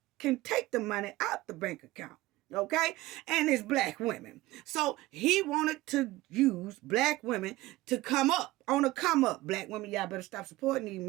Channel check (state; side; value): quieter; left; 18.4 dB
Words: can take the money out the bank account? Okay? And it's black women. So he wanted to use black women to come up. On a come up. Black women, y'all better stop supporting these